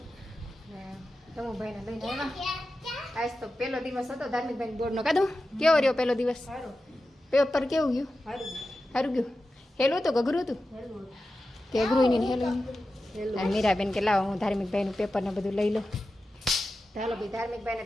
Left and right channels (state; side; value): normal; both; correlation 0.92